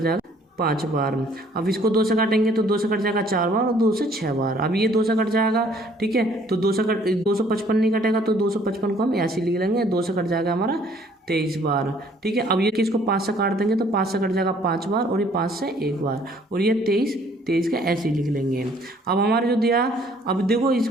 5 बार। अब इसको 2 से काटेंगे तो 2 से कट जाएगा 4 बार और 2 से 6 बार। अब ये 2 से कट जाएगा। ठीक है, तो 255 नहीं कटेगा, तो 255 को हम ऐसे लिख लेंगे, 2 से कट जाएगा हमारा 23 बार। ठीक है, अब ये किसको 5 से काट देंगे तो 5 से कट जाएगा 5 बार, और ये 5 से 1 बार, और ये 23 का ऐसे लिख लेंगे। अब हमारे जो दिया, अब देखो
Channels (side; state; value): both; normal; correlation 0.60